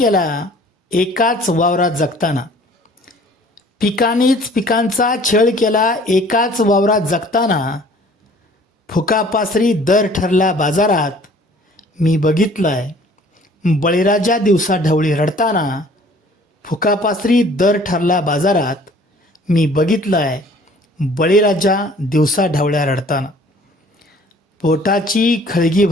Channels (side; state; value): both; normal; correlation 0.53